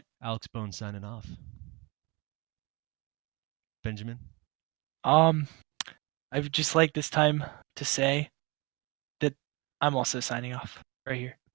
Alex Bone signing off. Benjamin. Um, I would just like this time to say that I'm also signing off right here.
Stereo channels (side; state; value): left; quieter; 26.9 dB